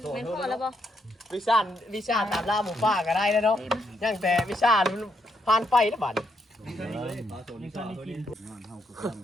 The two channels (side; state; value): both; normal; correlation 0.77